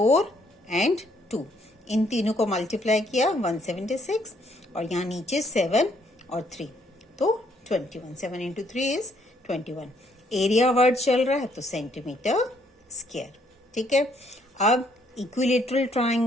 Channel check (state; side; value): normal; both; correlation 0.69